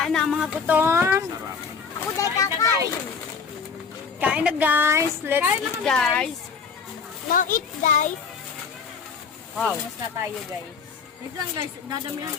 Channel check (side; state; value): right; quieter; 5.6 dB